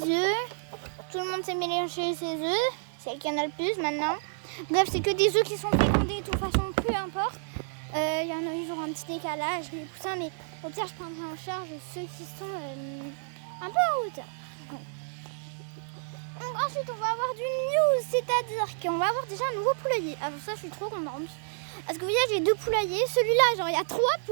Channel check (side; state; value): left; silent; digital silence